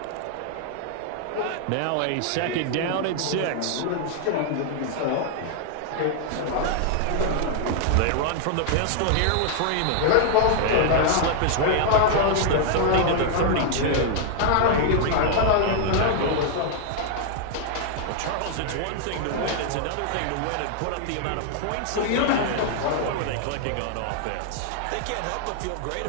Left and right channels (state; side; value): different; both; correlation 0.00